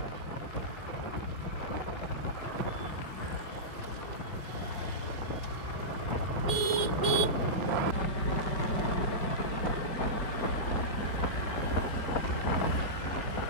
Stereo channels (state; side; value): late; right; 5.0 ms